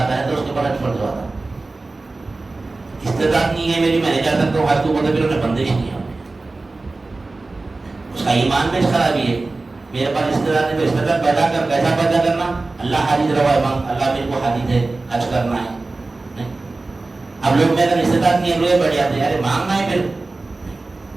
ہے تو اس کے اوپر حج فرض ہوتا ہے۔ استعداد نہیں ہے میری، میں نہیں جا سکتا ہوں حج کو، بولتے پھر انہیں بندش نہیں ہے، اس کا ایمان میں خرابی ہے۔ میرے پاس استعداد ہے تو استعداد پیدا کر، کیسا پیدا کرنا؟ اللہ حاجت روا امام، اللہ میرے کو حاجت ہے حج کرنا ہے۔ اب لوگ میرا استعداد نہیں ہے، روئے بڑھ جاتے ہیں، ارے مانگنا ہے۔ پھر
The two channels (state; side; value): quieter; left; 3.4 dB